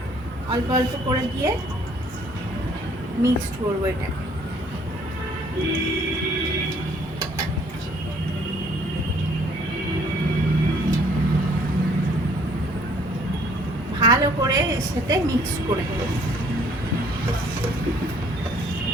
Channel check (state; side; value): normal; both; correlation 0.60